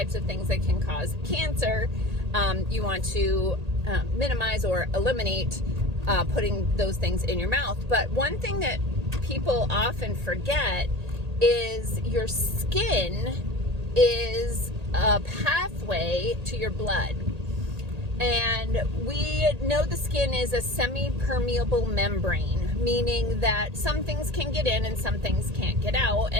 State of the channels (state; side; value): late; left; 1.8 ms